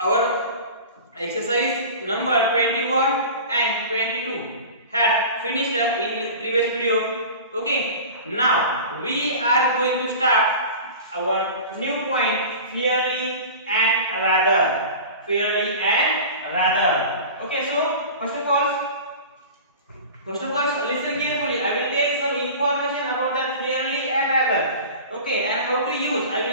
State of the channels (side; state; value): both; inverted; correlation -0.36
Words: exercise number 21 and 22 had finished in previous video. Okay, now we are going to start our new point, fairly and rather. Fairly and rather. Okay, so first of all, listen carefully. I will tell some information about that fairly and rather. Okay, and how to use. I